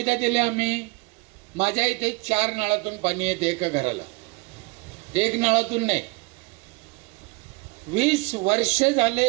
दिल्या आम्ही? माझ्या इथे 4 नळातून पाणी येते एका घराला, 1 नळातून नाही. 20 वर्ष झाले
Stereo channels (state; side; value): quieter; left; 26.4 dB